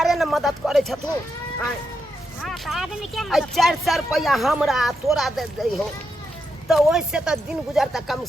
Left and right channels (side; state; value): both; normal; correlation 0.84